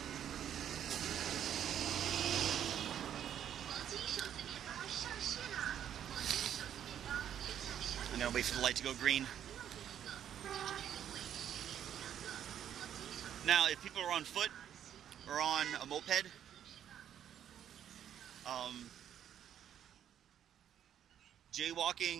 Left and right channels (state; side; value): quieter; left; 9.9 dB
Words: I'm gonna wait for the light to go green. Now, if people are on foot or on a moped,